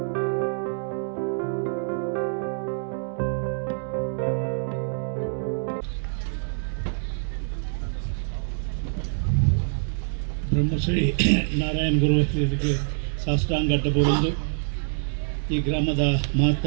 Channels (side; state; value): left; silent; digital silence